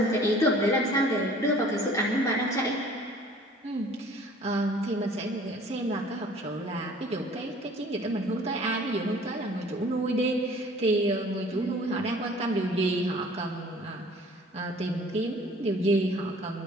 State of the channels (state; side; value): normal; both; correlation 0.51